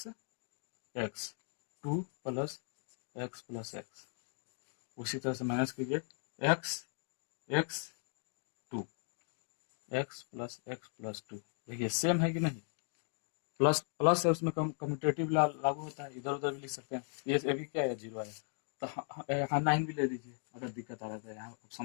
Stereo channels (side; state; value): right; silent; 53 dB below the other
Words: x 2 plus x, उसी तरह से माइनस कीजिए x x 2 x प्लस 2, देखिए सेम है कि नहीं, प्लस प्लस है, उसमें कम्यूटेटिव लागू होता है, इधर उधर भी लिख सकते हैं। ये भी क्या है, 0 आया, तो हाँ 9 भी ले लीजिए, अगर दिक्कत आ रहा है यहाँ